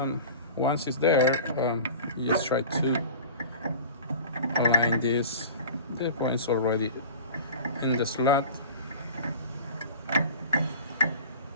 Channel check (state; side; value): inverted; both; correlation -0.38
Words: once it's there, you just try to align this. The point's already in the slot,